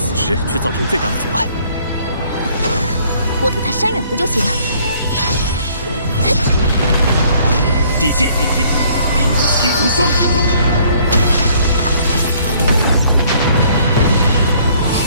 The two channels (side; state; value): both; inverted; correlation -0.61